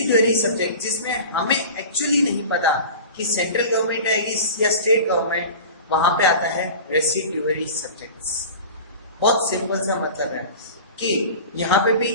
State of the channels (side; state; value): both; inverted; correlation -0.36